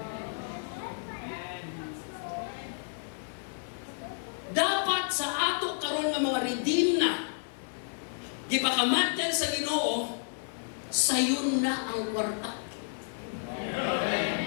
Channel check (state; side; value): silent; right; 57 dB below the other